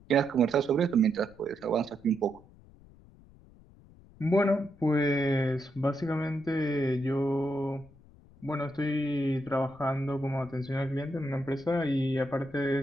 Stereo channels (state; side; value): noise; left; rumble, 24 dB below the sound